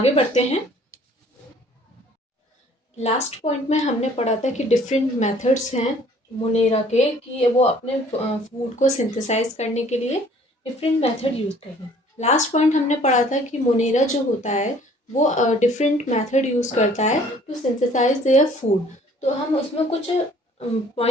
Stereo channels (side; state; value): both; normal; correlation 0.55